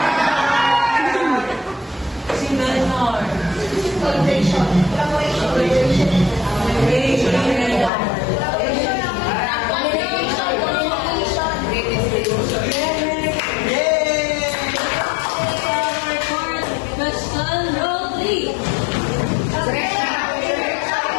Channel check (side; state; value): right; drops out; at 7.9 s